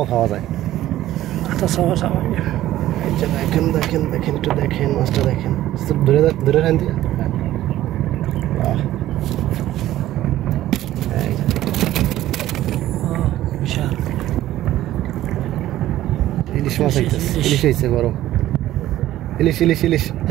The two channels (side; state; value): left; quieter; 14.1 dB